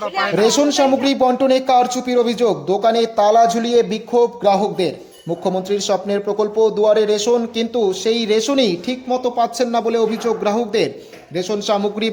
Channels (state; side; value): identical; both; correlation 1.00